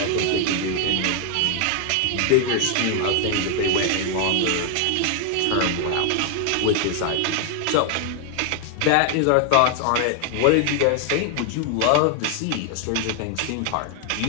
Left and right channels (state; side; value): different; both; correlation 0.00